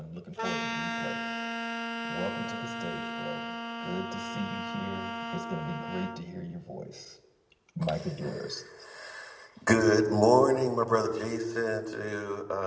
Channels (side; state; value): both; identical; correlation 1.00